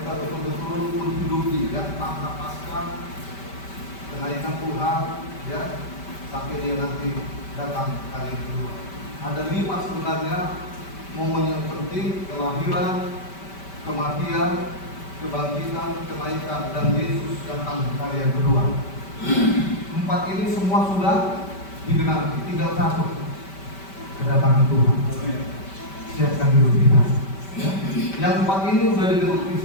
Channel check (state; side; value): late; right; 5.2 ms